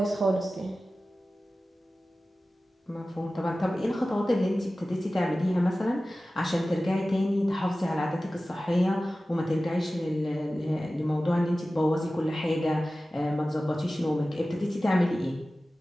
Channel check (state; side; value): normal; both; correlation 0.96